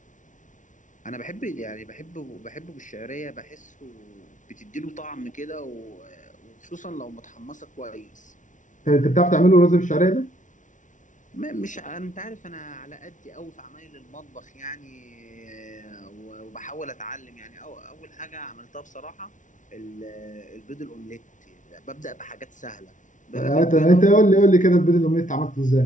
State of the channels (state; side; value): late; right; 0.37 ms